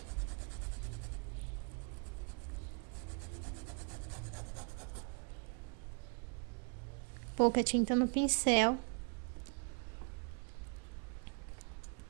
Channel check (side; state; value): left; quieter; 39.3 dB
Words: Pouca tinta no pincel.